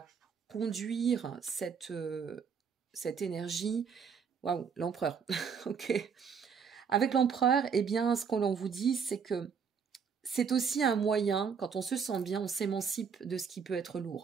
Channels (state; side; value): quieter; left; 6.4 dB